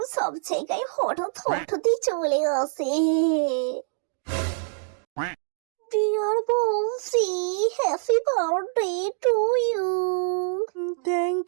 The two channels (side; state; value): left; silent; digital silence